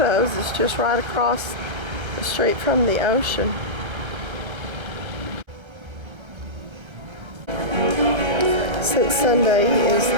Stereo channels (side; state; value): left; late; 1.3 ms